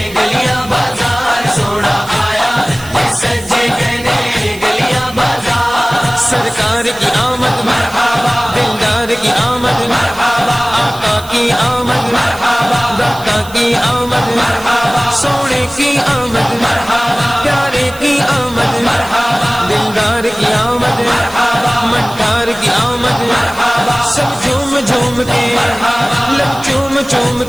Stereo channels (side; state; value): right; noise; hiss, 18 dB below the sound